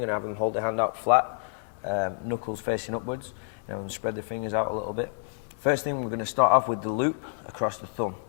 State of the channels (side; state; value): right; silent; 59 dB below the other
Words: you're going to have them hold their hand out flat, knuckles facing upwards, and spread the fingers out a little bit. First thing, we're going to start off with the loop across the thumb.